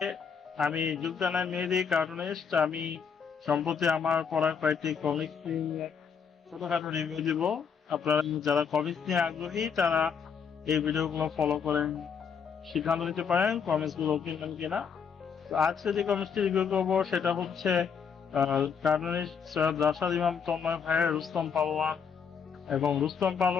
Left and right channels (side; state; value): right; quieter; 6.6 dB